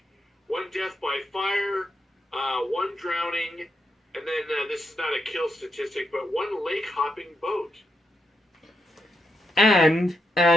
one death by fire, one drowning, and then this is not a kill statistic, but one lake hopping boat. And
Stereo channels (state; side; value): normal; both; correlation 0.83